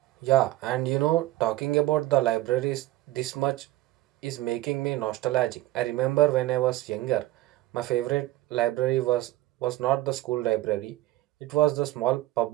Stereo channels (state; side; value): quieter; left; 16.7 dB